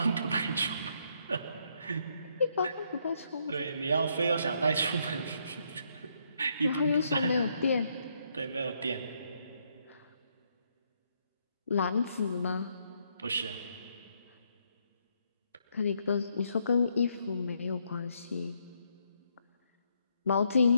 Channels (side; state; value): both; inverted; correlation -0.74